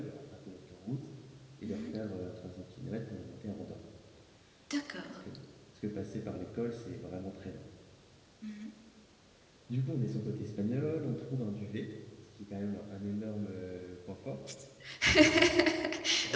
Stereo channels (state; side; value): identical; both; correlation 1.00